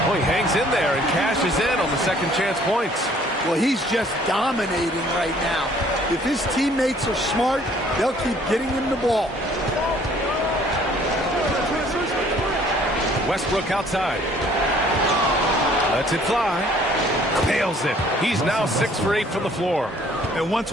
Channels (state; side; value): normal; both; correlation 0.58